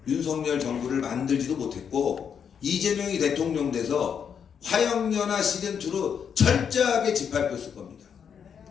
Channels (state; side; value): quieter; right; 7.4 dB